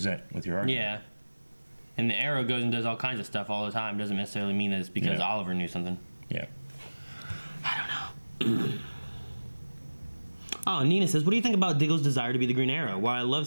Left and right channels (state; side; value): inverted; both; correlation -1.00